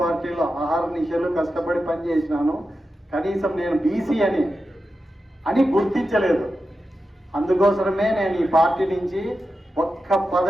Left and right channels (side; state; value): both; normal; correlation 0.90